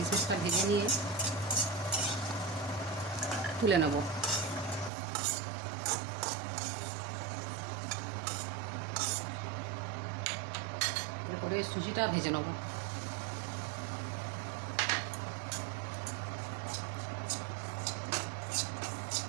ভেজে নিয়ে তুলে নেব। এরপরে সুজিটা ভেজে নেব।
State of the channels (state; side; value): drops out; left; at 4.9 s